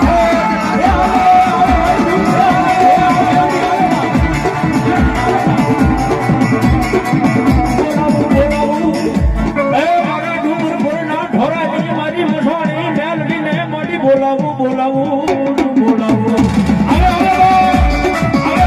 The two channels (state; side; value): identical; both; correlation 1.00